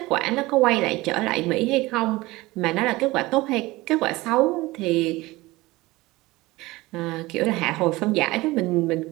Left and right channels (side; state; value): left; quieter; 20.2 dB